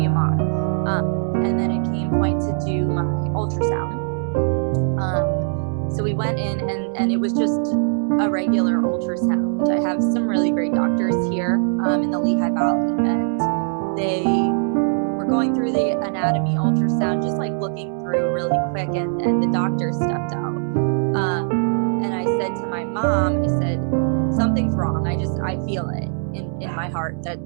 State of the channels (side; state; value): left; silent; 65 dB below the other